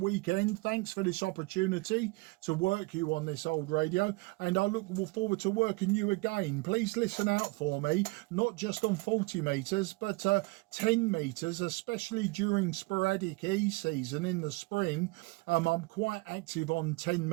Thanks for this opportunity to work you on this old radio, and I look forward to working you again. Please listen out for me, not just on 40 meters, but 10 meters, especially during sporadic E season in the spring. I'm quite active on 10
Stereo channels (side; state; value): left; quieter; 24.9 dB